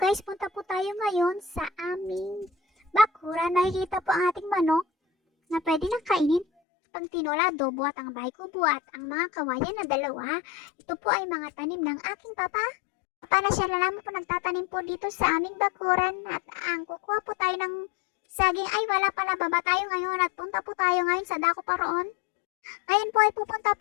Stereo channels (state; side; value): drops out; right; at 6.5 s